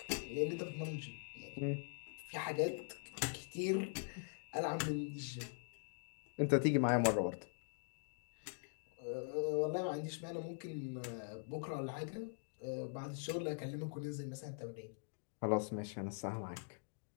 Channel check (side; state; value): right; silent; digital silence